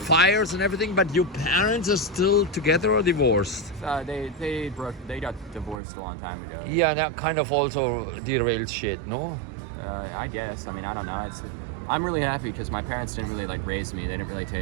and everything, but your parents are still together or divorced? They got divorced a long time ago. Yeah, that kind of also derailed shit, no? I guess. I mean, I don't know. I'm really happy because my parents didn't really like raise me. They didn't really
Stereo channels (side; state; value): left; drops out; at 5.8 s